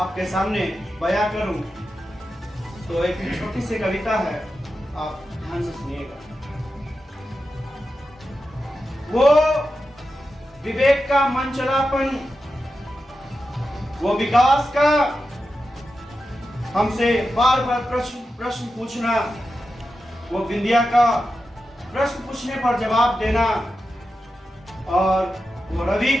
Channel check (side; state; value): both; normal; correlation 0.90